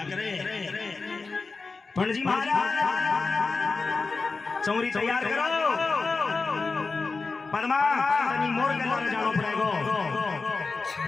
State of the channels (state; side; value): quieter; right; 4.1 dB